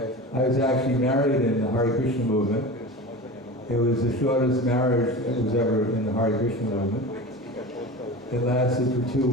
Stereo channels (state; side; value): normal; both; correlation 0.31